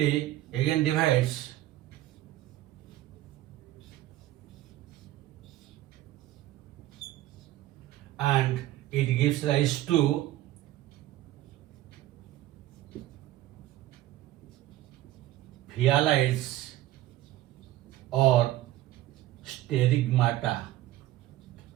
again divides and it gives rise to phyalides or sterigmata.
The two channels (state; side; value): quieter; left; 15.1 dB